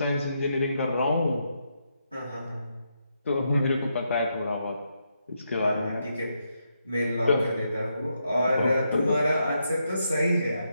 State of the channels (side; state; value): both; inverted; correlation -0.81